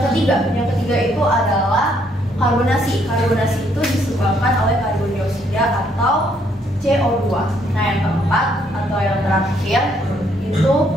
ketiga itu adalah karbonasi. Karbonasi itu disebabkan oleh karbon dioksida atau CO2. Nah, yang keempat atau yang terakhir itu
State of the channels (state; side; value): normal; both; correlation 0.70